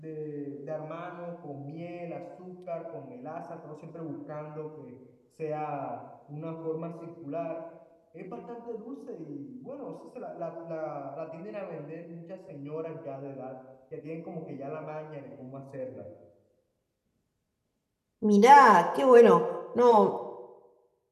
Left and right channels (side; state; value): both; identical; correlation 1.00